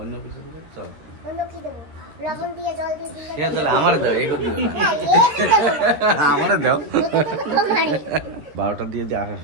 কিছু দিলে চল। অন্য কি দেবো? লবণ দিয়ে জল দিয়ে দিলে ঠিক আছে, আমার দাও, এই করতে না, এই দেবো না। আমার দাও। ওটা তো তোমারই। 12টা দিয়ে দিয়ে আসা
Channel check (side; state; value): left; late; 13 ms